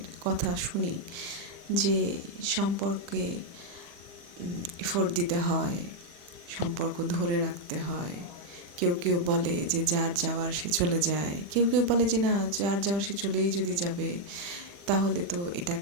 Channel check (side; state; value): left; late; 40 ms